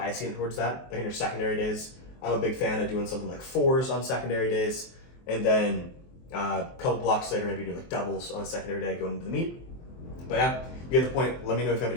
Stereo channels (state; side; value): late; right; 23 ms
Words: it towards that. Like in your secondary days, I'm a big fan of doing something like 4s on secondary days, and then a couple blocks later, maybe do like doubles on a secondary day going into the meet. But yeah, you get the point. Let me know if you have